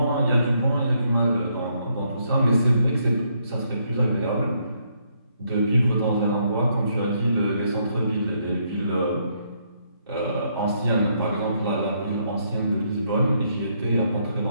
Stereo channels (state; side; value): inverted; both; correlation -0.74